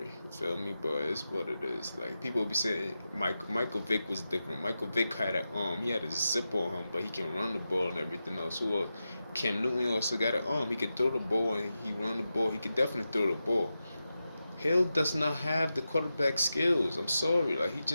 You feel me? But it's what it is. Like people be saying Michael Vick was different. Michael Vick had an arm. He had a zip on him, but he can run the ball and everything else. Who else? Cam Newton also got an arm. He can throw the ball and he run the ball. He can definitely throw the ball. Hill does not have the quarterback skills. I'm sorry. Like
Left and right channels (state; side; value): inverted; both; correlation -0.91